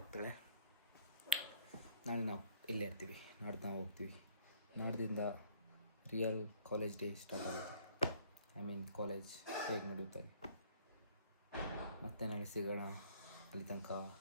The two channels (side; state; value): both; inverted; correlation -0.56